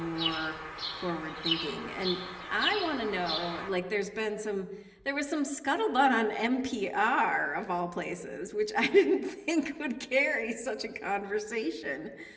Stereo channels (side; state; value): both; identical; correlation 1.00